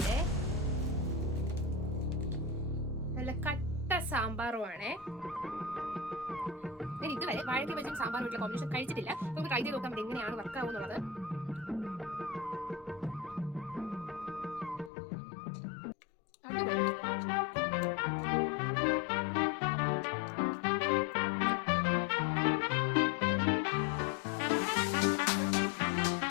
നല്ല കട്ട സാമ്പാറുമാണേ. ഞാൻ ഇതുവരെ വാഴയ്ക്ക് വെച്ചും സാമ്പാറുമായിട്ടുള്ള കോമ്പിനേഷൻ കഴിച്ചിട്ടില്ല. നമുക്ക് ട്രൈ ചെയ്ത് നോക്കാം എങ്ങനെയാണ് വർക്കാവുന്നുള്ളത്.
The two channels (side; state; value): right; drops out; at 14.9 s